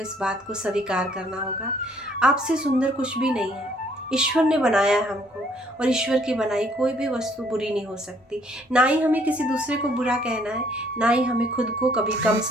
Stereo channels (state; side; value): normal; both; correlation 0.64